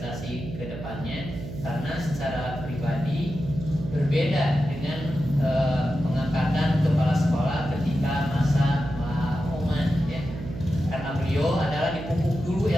ke depannya, karena secara pribadi berbeda dengan pengangkatan kepala sekolah ketika masa Oman ya. Karena beliau adalah dipupuk dulu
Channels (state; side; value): noise; right; hum, 10 dB below the sound